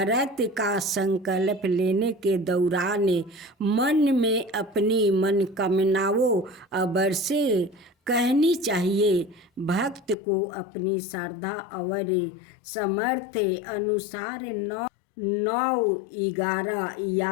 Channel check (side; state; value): right; drops out; at 10.2 s